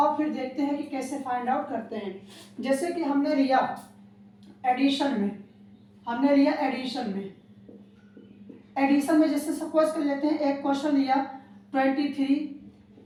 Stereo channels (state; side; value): identical; both; correlation 1.00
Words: फिर देखते हैं कि कैसे फाइंड आउट करते हैं। जैसे कि हमने लिया एडिशन में जैसे सपोज कर लेते हैं, एक क्वेश्चन लिया 23